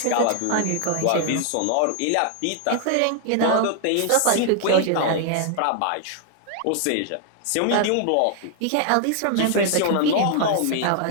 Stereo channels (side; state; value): both; different; correlation 0.00